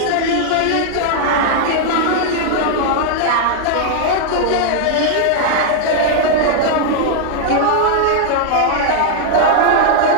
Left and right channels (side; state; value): both; different; correlation -0.01